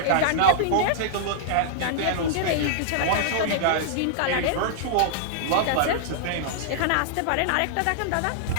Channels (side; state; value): both; different; correlation -0.01